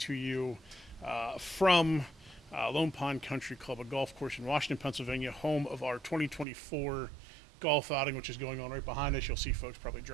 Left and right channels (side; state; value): left; drops out; at 6.5 s